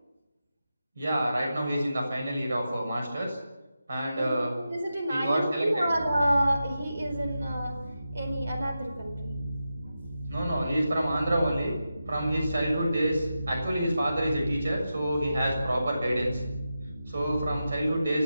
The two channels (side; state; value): both; inverted; correlation -0.90